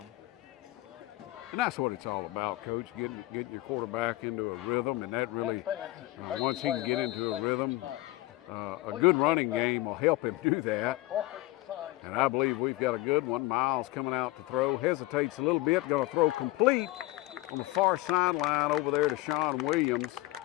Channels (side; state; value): right; quieter; 19.1 dB